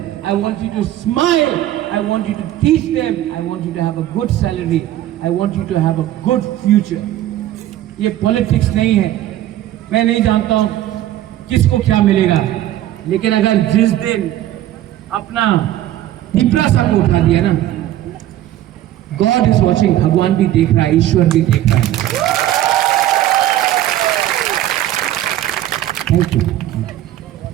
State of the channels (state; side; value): quieter; left; 13.3 dB